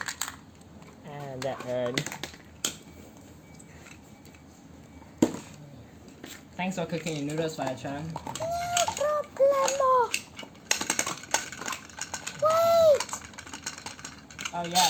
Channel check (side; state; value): both; identical; correlation 1.00